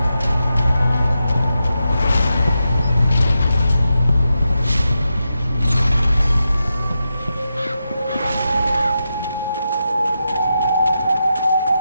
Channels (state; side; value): inverted; both; correlation -0.88